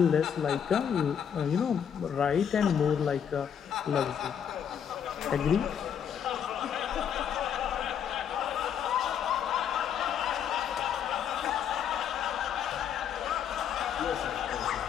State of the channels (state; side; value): quieter; right; 8.3 dB